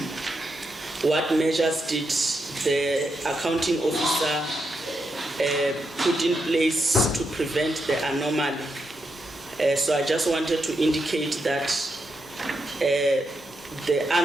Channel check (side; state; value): both; normal; correlation 0.84